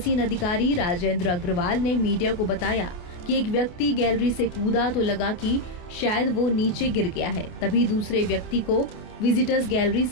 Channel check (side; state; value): right; late; 28 ms